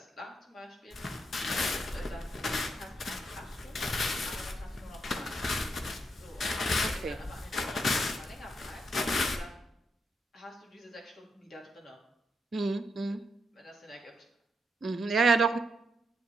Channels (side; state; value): both; normal; correlation 0.80